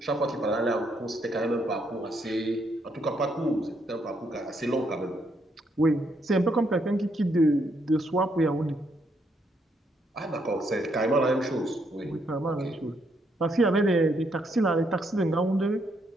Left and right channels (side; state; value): both; normal; correlation 0.74